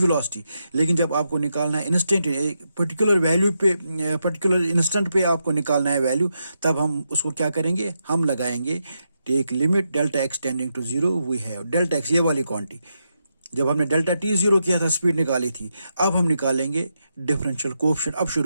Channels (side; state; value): both; inverted; correlation -0.84